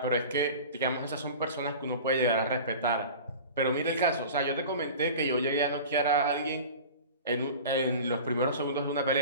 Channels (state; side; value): inverted; both; correlation -0.36